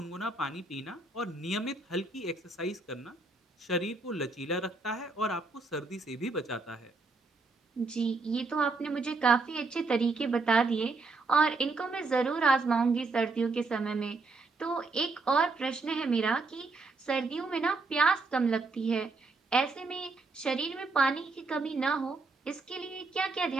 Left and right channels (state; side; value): quieter; left; 3.7 dB